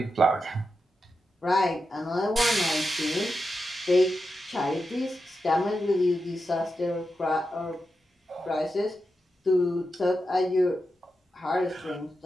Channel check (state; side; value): normal; both; correlation 0.89